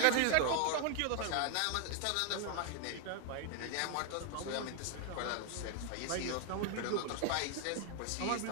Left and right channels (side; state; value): both; different; correlation 0.00